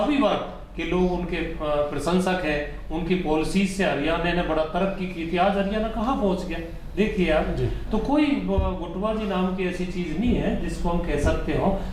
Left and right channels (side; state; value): both; identical; correlation 1.00